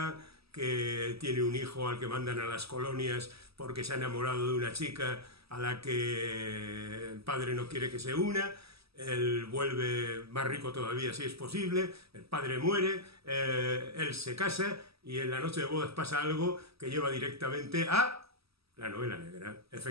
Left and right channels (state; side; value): late; left; 0.77 ms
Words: que tiene un hijo al que mandan a las colonias porque se ha enamorado de una chica a la que el padre no quiere que se una, él vuelve más rico todavía si es posible, el padre muere, él se casa y en la noche de bodas pasa algo que lleva directamente a la novela negra.